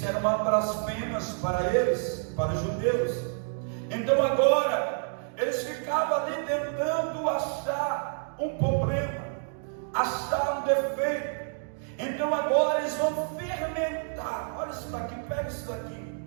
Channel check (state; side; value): silent; left; digital silence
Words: era uma blasfêmia para eles, para os judeus. Então agora, Eles ficavam ali tentando achar um problema, achar um defeito. Então agora eles vão fermentar. Olha isso daqui, pega isso daqui.